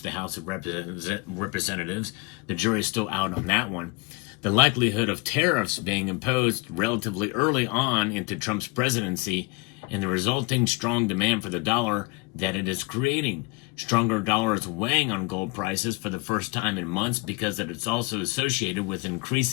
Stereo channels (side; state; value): right; quieter; 27.4 dB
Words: House of Representatives. The jury is still out on that one. The likelihood of tariffs being imposed relatively early on into Trump's presidency and the resulting strong demand for the dollar that it is creating. Stronger dollar is weighing on gold prices for the first time in months because it's also associated with